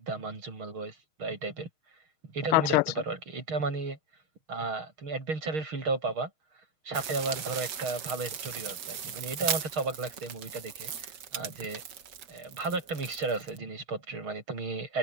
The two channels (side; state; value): left; late; 6.4 ms